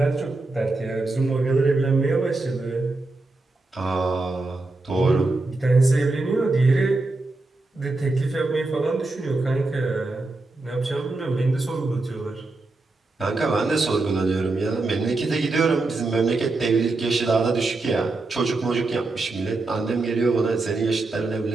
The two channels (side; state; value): left; quieter; 3.2 dB